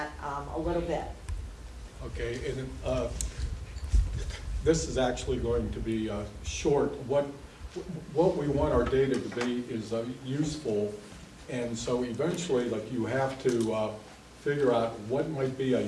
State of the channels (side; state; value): both; identical; correlation 1.00